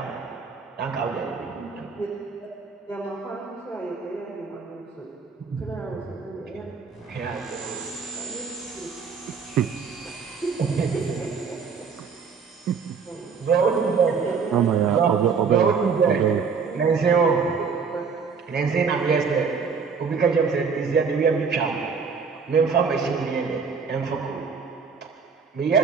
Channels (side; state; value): left; quieter; 5.6 dB